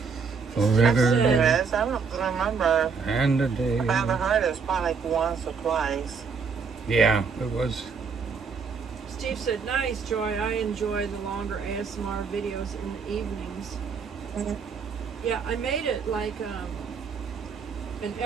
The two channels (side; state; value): left; quieter; 5.5 dB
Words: Forever There is. I don't remember. and a day. If I ever heard it, it's probably like once or twice. Yeah, it was. Steve said, "Nice, Joy. I enjoy the longer ASMR videos in the evenings." Mm-hmm. Yeah, I made it like an